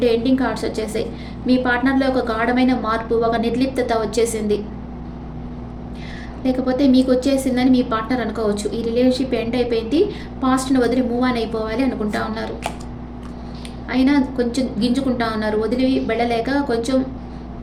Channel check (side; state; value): both; identical; correlation 1.00